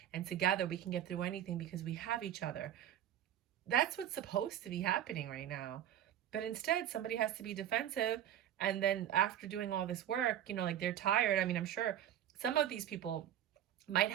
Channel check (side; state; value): left; quieter; 11.0 dB